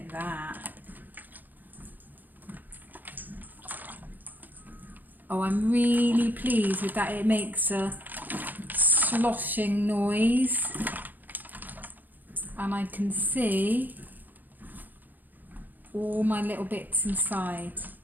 that. Oh, I'm really pleased with that. It makes a sloshing noise. And I can see all my little bits inside.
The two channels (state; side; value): late; left; 0.085 ms